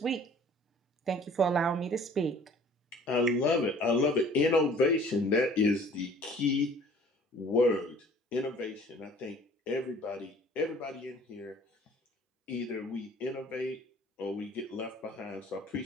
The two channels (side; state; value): both; normal; correlation 0.52